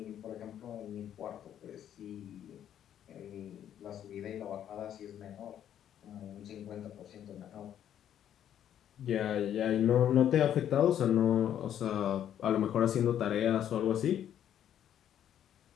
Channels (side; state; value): right; quieter; 10.3 dB